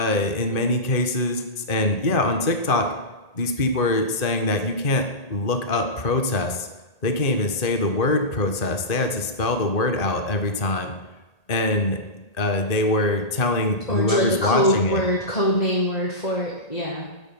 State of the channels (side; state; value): right; late; 1.8 ms